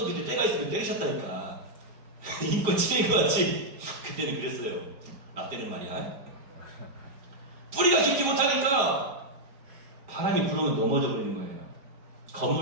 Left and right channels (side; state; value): left; late; 4.9 ms